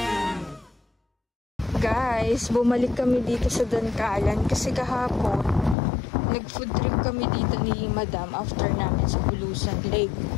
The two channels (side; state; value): right; drops out; at 5.8 s